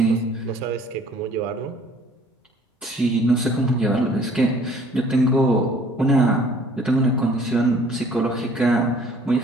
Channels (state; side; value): normal; both; correlation 0.55